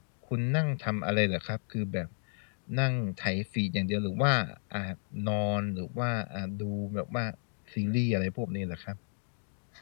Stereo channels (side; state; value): right; silent; digital silence